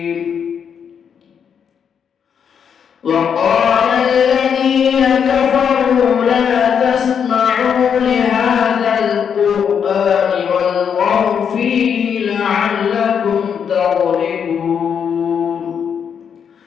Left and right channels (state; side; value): quieter; right; 7.5 dB